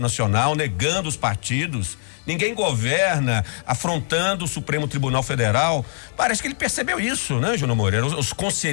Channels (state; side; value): silent; right; digital silence